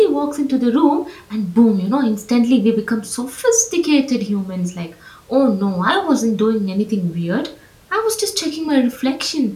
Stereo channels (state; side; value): identical; both; correlation 1.00